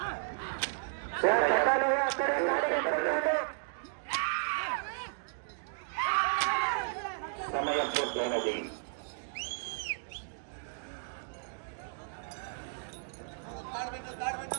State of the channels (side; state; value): left; silent; digital silence